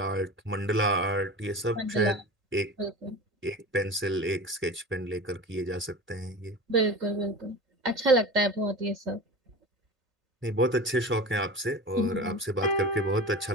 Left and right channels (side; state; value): both; normal; correlation 0.33